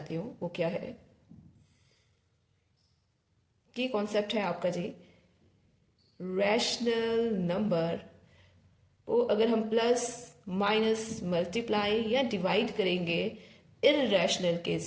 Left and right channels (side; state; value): both; identical; correlation 1.00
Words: हूँ. वो क्या है? की कॉन्सेप्ट है आपका जी, रैशनल नंबर को अगर हम प्लस माइनस मल्टीप्लाई या डिवाइड करेंगे इरेशनल के